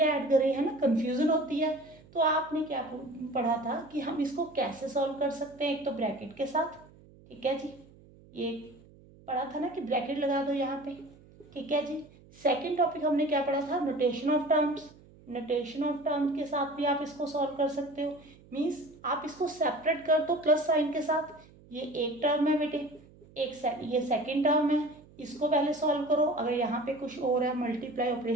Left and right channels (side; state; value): right; noise; hum, 24 dB below the sound